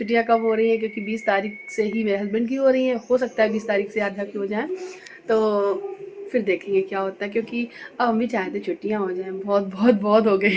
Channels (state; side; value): identical; both; correlation 1.00